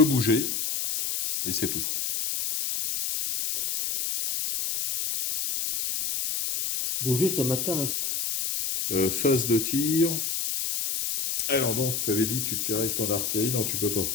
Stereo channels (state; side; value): noise; left; hiss, 1 dB below the sound